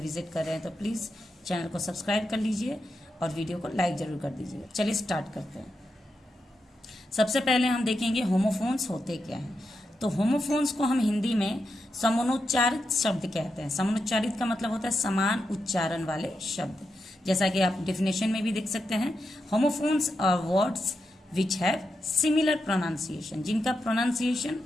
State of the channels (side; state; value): both; normal; correlation 0.86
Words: कर रहे हैं तो प्लीज़ चैनल को सब्सक्राइब कर लीजिए और वीडियो को लाइक ज़रूर कर दीजिए। चलिए स्टार्ट करते हैं। सबसे पहले हम देखेंगे होमोफोन्स होते क्या हैं। तो होमोफोन्स को हम हिंदी में समानोच्चारित शब्द कहते हैं। समानोच्चारित का मतलब होता है समान उच्चारण वाले शब्द। जैसा कि आप डेफिनेशन में भी देख सकते हैं, homophones are words which have similar pronunciation, जिनका प्रोनाउंसिएशन